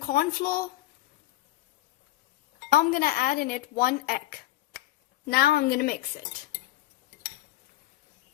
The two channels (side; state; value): right; quieter; 15.8 dB